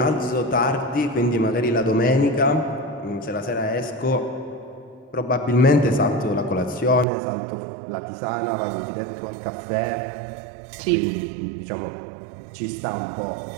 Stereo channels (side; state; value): left; drops out; at 7.1 s